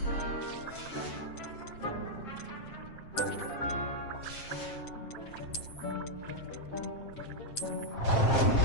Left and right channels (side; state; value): right; late; 7.5 ms